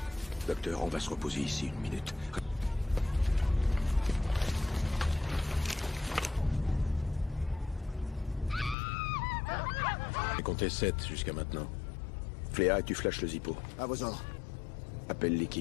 Docteur, on va se reposer ici une minute. J'ai compté 7 jusqu'à maintenant. Fléa, et tu flashes le Zippo. À vos ordres. Appelle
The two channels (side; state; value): right; drops out; at 8.8 s